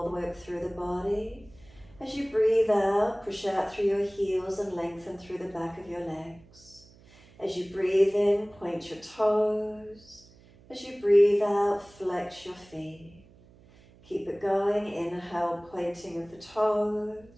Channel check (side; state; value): right; noise; hum, 26 dB below the sound